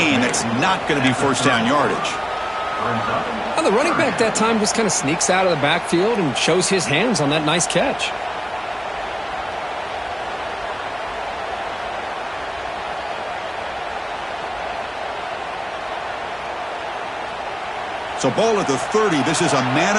That's not going to be first down yardage. Well, the running back that time just kind of sneaks out of the backfield and shows his hands on that nice catch. So ball at the 30. This is a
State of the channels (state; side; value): identical; both; correlation 1.00